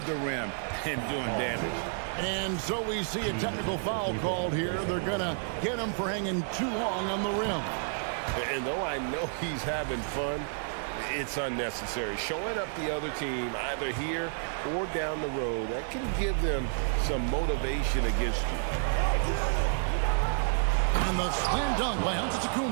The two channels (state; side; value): silent; left; 58 dB below the other